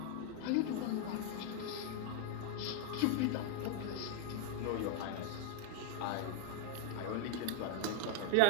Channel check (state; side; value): different; both; correlation 0.00